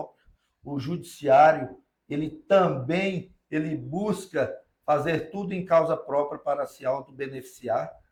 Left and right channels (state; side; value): identical; both; correlation 1.00